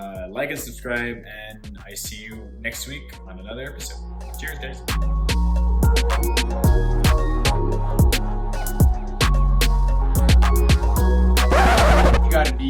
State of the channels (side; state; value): both; identical; correlation 1.00